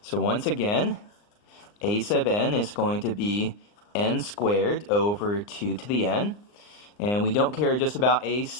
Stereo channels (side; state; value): right; late; 39 ms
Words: once again, a sub n is going to be n squared over 2 to the n. And we don't care just about a